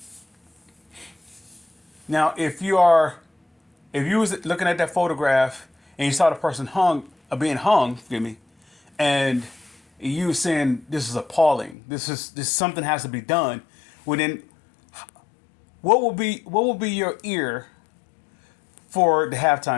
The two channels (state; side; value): drops out; right; at 11.8 s